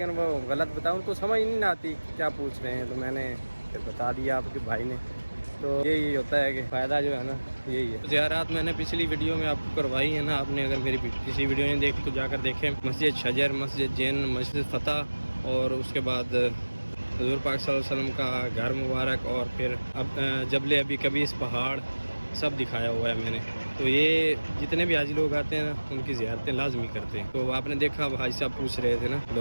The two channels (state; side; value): inverted; both; correlation -1.00